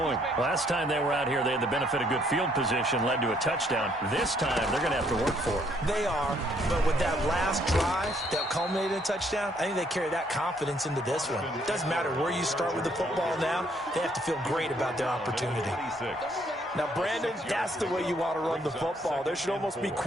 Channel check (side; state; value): both; normal; correlation 0.68